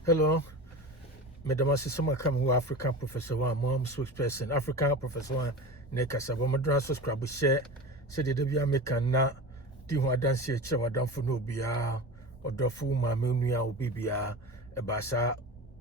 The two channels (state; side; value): normal; both; correlation 0.30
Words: Hello, Madam Assisama come African Professor One, Mom spokesperson, African Professor One, Nekasa, Madras subscribe, share, said the Debia Mekana, Diwa dance here, Chawadam for no bia, or Dofu, Mamunia, or Bibia, a Basa,